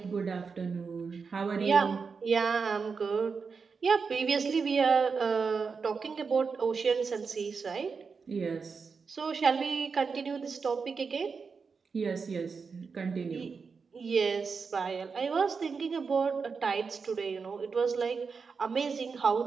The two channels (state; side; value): quieter; left; 5.2 dB